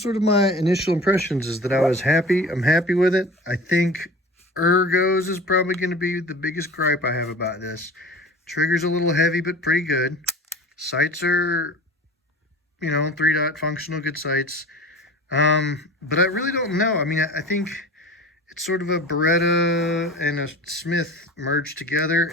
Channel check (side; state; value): both; normal; correlation 0.38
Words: sort of my initial impressions, is that I was happy. I'm happy with it. I think ergos is probably going to be the biggest gripe I have about this. Trigger's a little heavy, but pretty good. Sights are, you know, 3-dot functional, good sights. But I really don't know. I mean, I think it's sort of a Beretta and a Smith merged